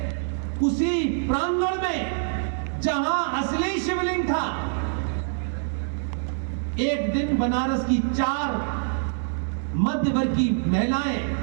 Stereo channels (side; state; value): left; silent; 59 dB below the other